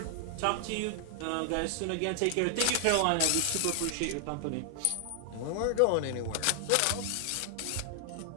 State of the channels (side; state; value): both; different; correlation 0.00